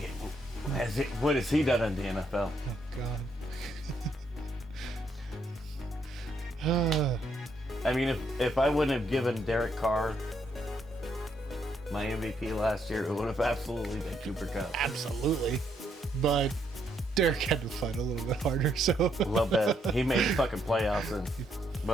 What has he done in the NFL? Oh God. I mean, if I wouldn't have given Derek Carr my MVP last year, it would have absolutely been Cooper Kupp. Absolutely. But Derek had to fight a little bit harder, so. A little bit. He made the fucking playoffs, and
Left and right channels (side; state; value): both; normal; correlation 0.74